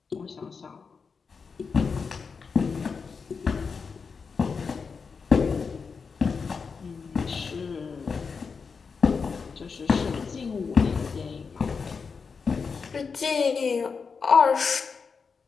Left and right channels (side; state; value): right; quieter; 5.3 dB